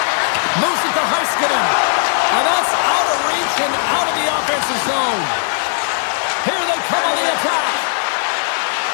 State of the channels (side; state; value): right; silent; digital silence